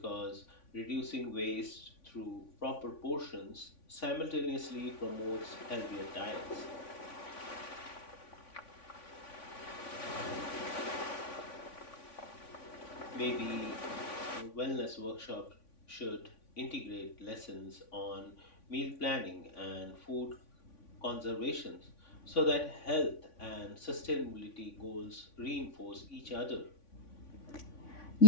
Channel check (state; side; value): late; right; 3.5 ms